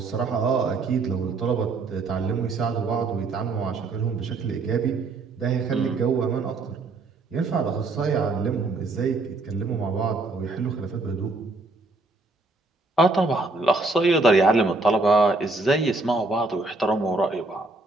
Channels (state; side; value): quieter; left; 3.4 dB